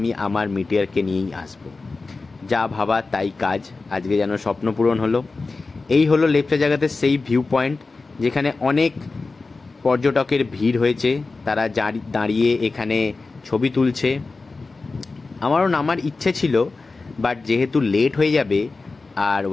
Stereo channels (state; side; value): quieter; right; 3.8 dB